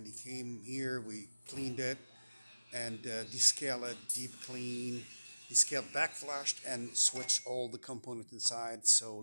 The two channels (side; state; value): both; inverted; correlation -0.97